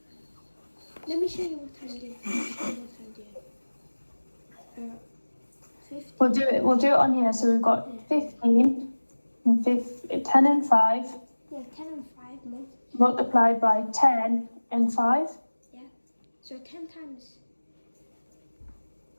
Let me show you what I'm doing. 50. We'll do it on here. So we've got 15 and 10 and 5 Yeah, 10 and 5 multiplied by 10 and 5. Yeah. So 10 times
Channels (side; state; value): both; inverted; correlation -1.00